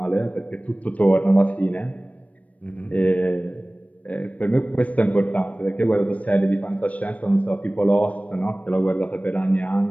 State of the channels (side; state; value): right; late; 0.067 ms